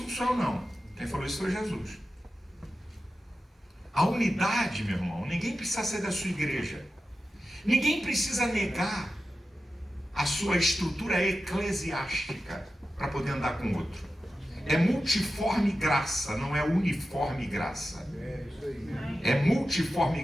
não sou eu, não. Quem falou isso foi Jesus. A unidade, meu irmão, ninguém precisa ser da sua igreja. Ninguém precisa negar a sua estrutura eclesiástica para poder andar com o outro. É multiforme graça, não é uniforme graça. É multiforme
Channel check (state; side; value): normal; both; correlation 0.92